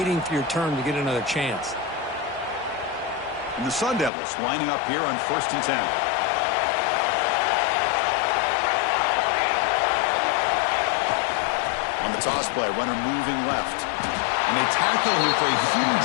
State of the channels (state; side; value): drops out; right; at 4.1 s